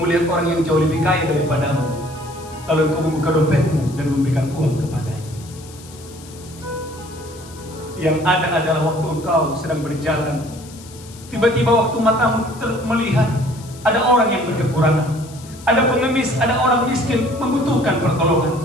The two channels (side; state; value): left; noise; hiss, 20 dB below the sound